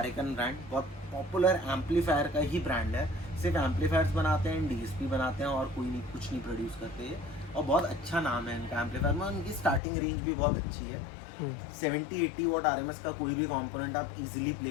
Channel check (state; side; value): drops out; right; at 9.8 s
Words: ब्रांड, बहुत पॉपुलर एम्पलीफायर का ही ब्रांड है। सिर्फ एम्पलीफायर्स बनाते हैं, डीएसपी बनाते हैं और कोई नहीं, कुछ नहीं प्रोड्यूस करते हैं। और बहुत अच्छा नाम है इनका एम्पलीफायर में। उनकी स्टार्टिंग रेंज भी बहुत अच्छी है। 70-80 वॉट आरएमएस का कोई भी कंपोनेंट आप इजीली